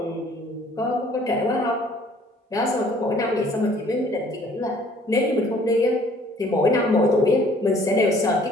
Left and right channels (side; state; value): both; normal; correlation 0.57